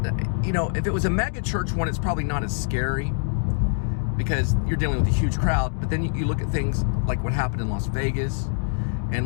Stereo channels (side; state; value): right; silent; digital silence